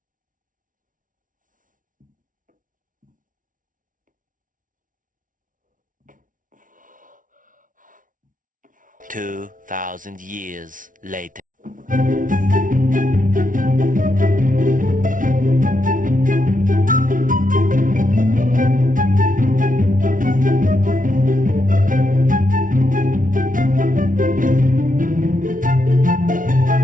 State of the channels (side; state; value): left; late; 0.38 ms